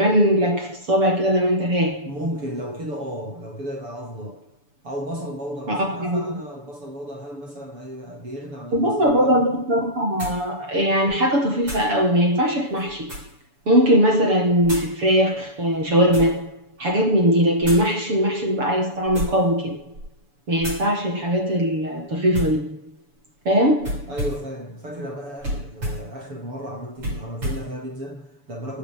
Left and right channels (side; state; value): left; late; 7.0 ms